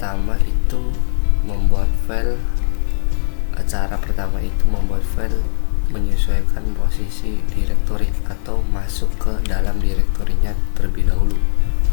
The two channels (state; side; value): silent; right; 56 dB below the other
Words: itu membuat file. Cara pertama itu membuat file menyesuaikan posisi directory atau masuk ke dalam direktorinya terlebih dahulu.